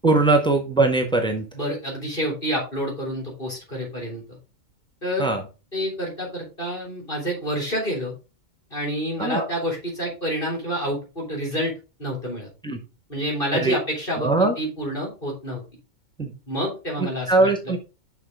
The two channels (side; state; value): right; late; 2.2 ms